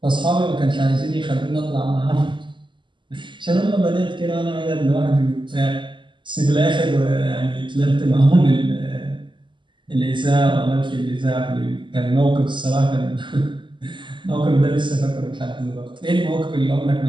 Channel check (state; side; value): late; left; 0.23 ms